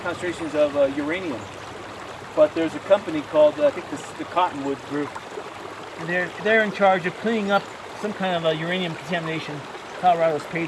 of uranium, but there's a company called, I think the Cottonwood Group, and they're in charge of cleaning up some kind of uranium contamination Colorado's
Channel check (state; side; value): identical; both; correlation 1.00